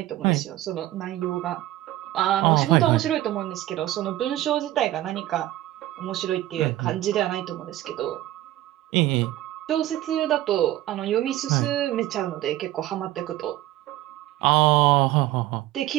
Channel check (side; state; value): left; quieter; 15.1 dB